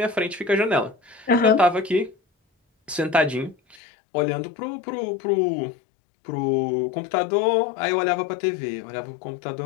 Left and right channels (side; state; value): right; drops out; at 3.8 s